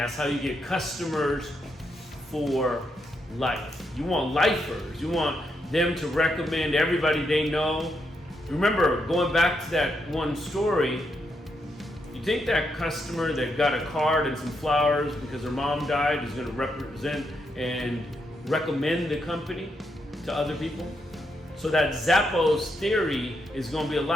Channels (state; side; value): normal; both; correlation 0.80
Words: how you get customers for life. You want lifers. You want them to recommend everybody they know. Remember, going back to that one story, you think that customer that got a card and some flowers because her mom died is going to represent and recommend the company to other people? So that Zappos theory is going to be